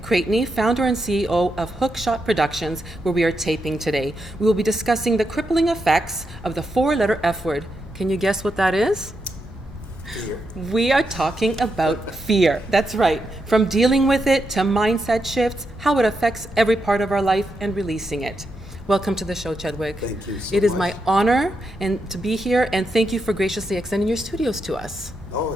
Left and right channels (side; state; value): both; normal; correlation 0.84